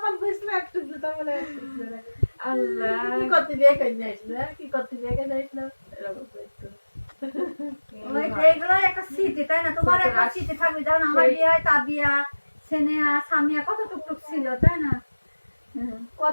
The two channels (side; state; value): both; inverted; correlation -1.00